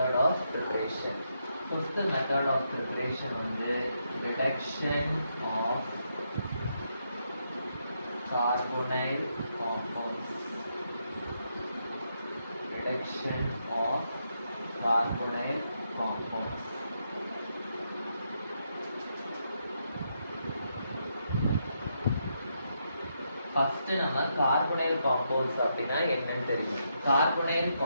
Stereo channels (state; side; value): inverted; both; correlation -0.80